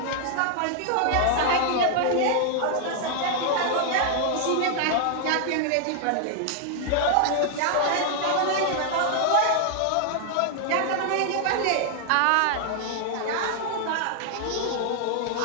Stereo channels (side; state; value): both; different; correlation 0.00